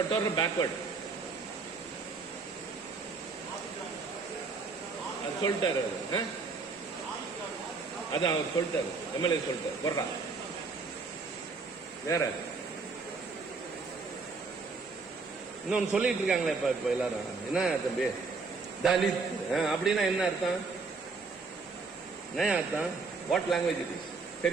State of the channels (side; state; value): left; quieter; 4.3 dB